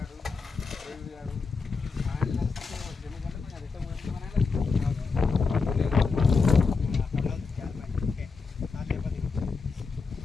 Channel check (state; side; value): quieter; right; 4.6 dB